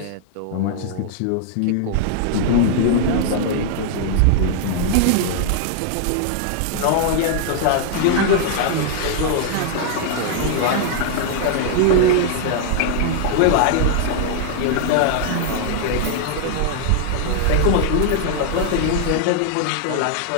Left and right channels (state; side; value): different; both; correlation 0.00